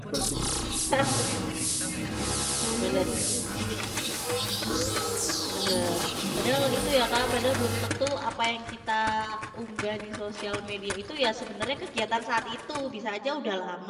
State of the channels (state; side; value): identical; both; correlation 1.00